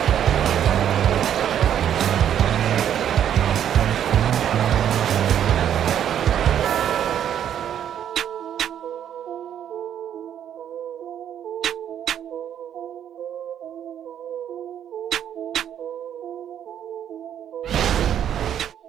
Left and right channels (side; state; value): left; quieter; 9.8 dB